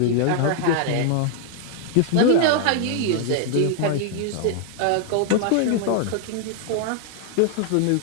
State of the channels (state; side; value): different; both; correlation 0.00